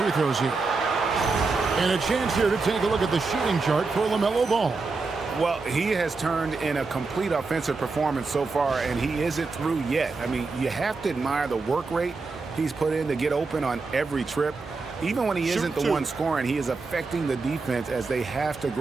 throws here. And a chance here to take a look at the shooting chart for LaMelo Ball. Well, he has turned in a complete offensive performance so far, and he isn't through yet. I mean, you have to admire the work rate he's put in to get open on every trip. Even when he isn't the one scoring, he is affecting the defense as they have to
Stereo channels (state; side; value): quieter; left; 4.1 dB